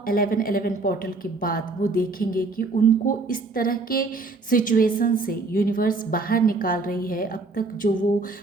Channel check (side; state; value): left; quieter; 3.6 dB